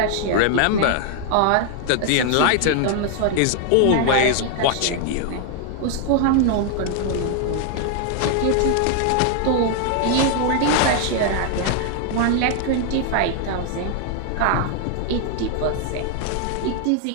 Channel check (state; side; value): different; both; correlation 0.00